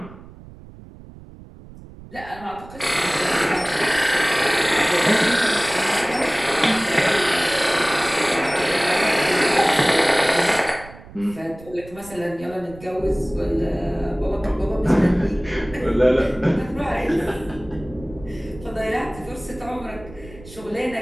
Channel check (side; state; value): right; noise; rumble, 19 dB below the sound